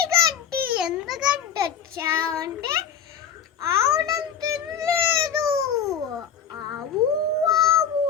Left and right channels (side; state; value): right; quieter; 7.8 dB